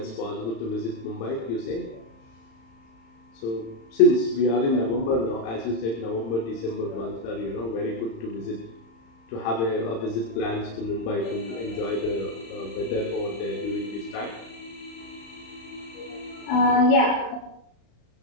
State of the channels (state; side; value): late; right; 35 ms